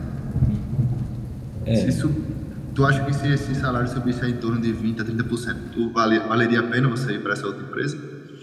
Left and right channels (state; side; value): identical; both; correlation 1.00